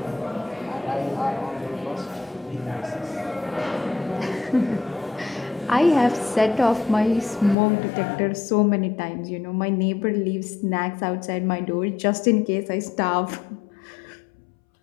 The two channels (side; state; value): right; drops out; at 7.6 s